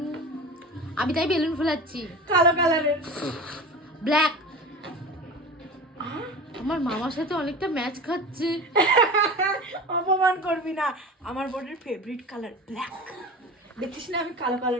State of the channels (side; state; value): both; normal; correlation 0.33